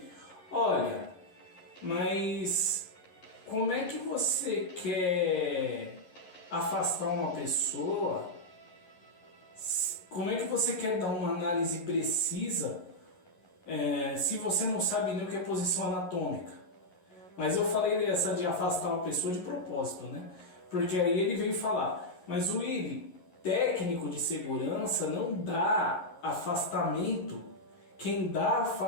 olha, mas como é que você quer afastar uma pessoa? Como é que você quer dar uma análise precisa se você não sabe nem o que é posição anatômica? Mas eu falei essa de afastar uma pessoa de propósito, né? Porque aí ele veio falar, mas o Willi, técnico de segurança não dá afastamento. Quem dá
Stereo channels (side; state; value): right; late; 11 ms